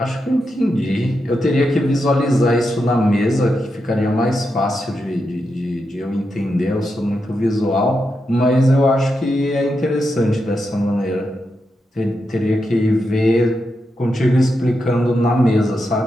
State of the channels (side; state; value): both; normal; correlation 0.86